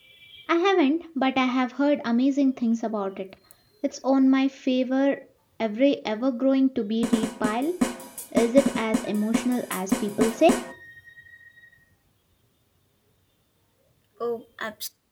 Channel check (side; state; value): both; identical; correlation 1.00